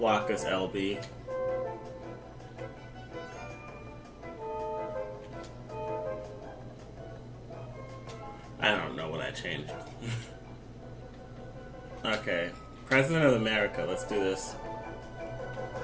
is LB. I don't know what I changed. Okay. President of America. Let's do this.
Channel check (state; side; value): identical; both; correlation 1.00